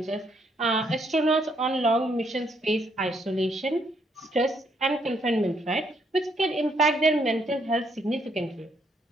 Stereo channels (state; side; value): normal; both; correlation 0.72